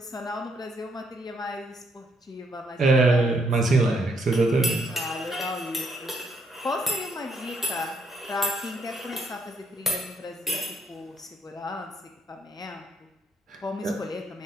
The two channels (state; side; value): normal; both; correlation 0.73